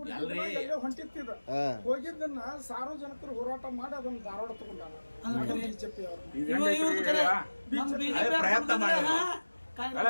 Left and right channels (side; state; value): both; inverted; correlation -1.00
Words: ಹೊಂಟಿತ್ತಿದ ಹೋಗಿದ್ದನ್ನ ಸಾರ್ವಜನಿಕರು ಹೋರಾಟ ಮಾಡಿ ಅದನ್ನ ಧಾರವಾಡ ತಗೊಂಡಾರ ಬಿಜೆಪಿ ಅವರು.